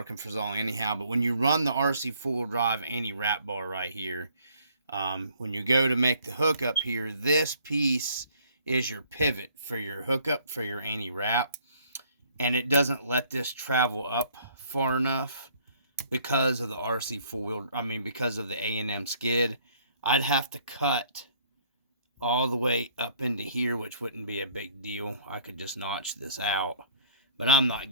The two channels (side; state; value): both; inverted; correlation -0.59